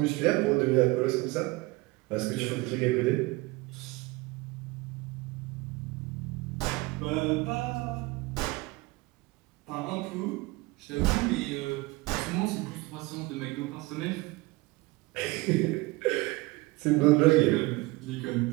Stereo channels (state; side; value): quieter; left; 22.5 dB